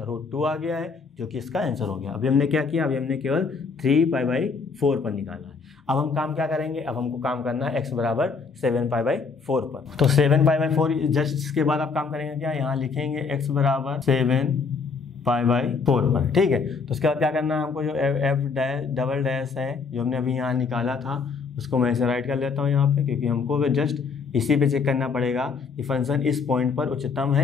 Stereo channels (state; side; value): quieter; right; 5.0 dB